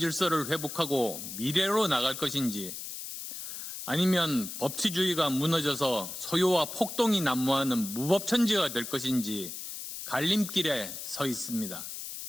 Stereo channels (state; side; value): noise; left; hiss, 8 dB below the sound